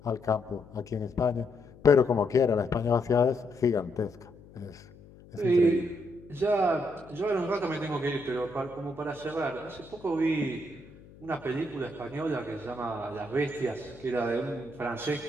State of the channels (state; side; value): noise; left; hum, 22 dB below the sound